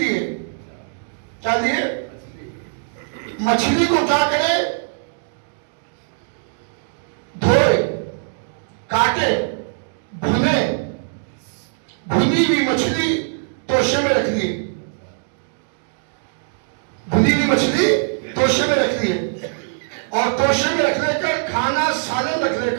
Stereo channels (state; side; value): silent; left; digital silence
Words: کیا دیے؟ مچھلی کو کیا کرے؟ دھوئے, کاٹے, بھنے, بھنی ہوئی مچھلی توشے میں رکھ دیے. بھنی ہوئی مچھلی توشے میں رکھ دیے, اور توشے میں رکھ لے کر کھانا سالن رکھ لے